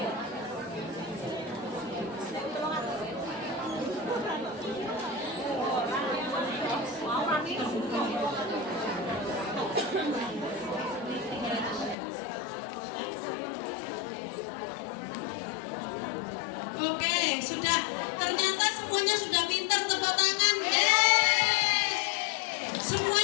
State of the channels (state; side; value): drops out; right; at 12.0 s